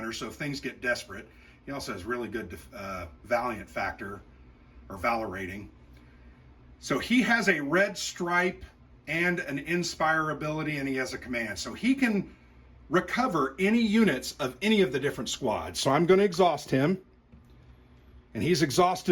so if things get desperate, he also has really good Valiant factor, or Valor rating. So he has a red stripe and an inspire ability, and he has a command. So he can recover any units of any of the different squads. So I'm going to exhaust him. And he's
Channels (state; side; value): identical; both; correlation 1.00